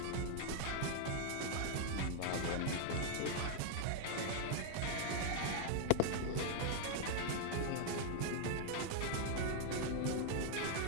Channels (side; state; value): both; different; correlation 0.00